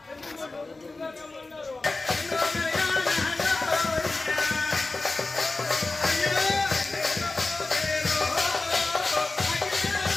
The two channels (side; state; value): right; quieter; 3.4 dB